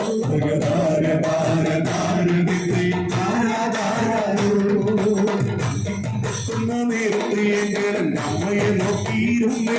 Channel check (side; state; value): both; identical; correlation 1.00